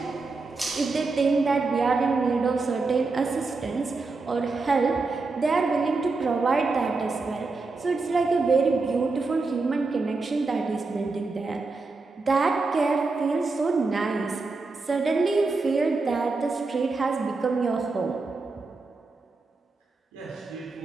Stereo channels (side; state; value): left; quieter; 3.9 dB